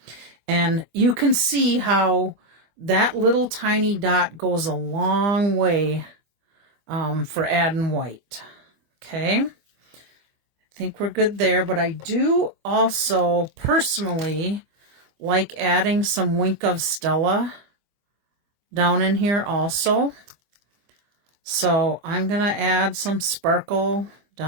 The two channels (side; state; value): left; late; 24 ms